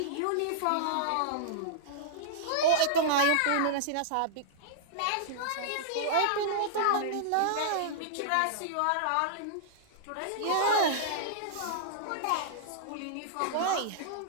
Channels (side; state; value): both; different; correlation -0.02